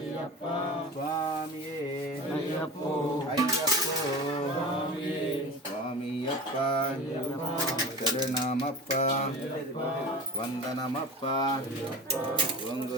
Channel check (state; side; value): normal; both; correlation 0.33